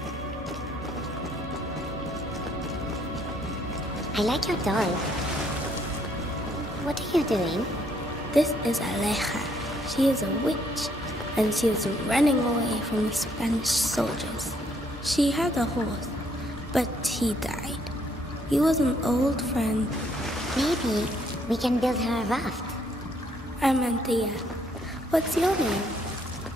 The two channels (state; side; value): normal; both; correlation 0.69